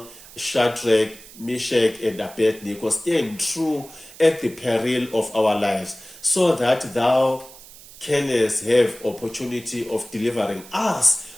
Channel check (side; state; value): right; noise; hiss, 19 dB below the sound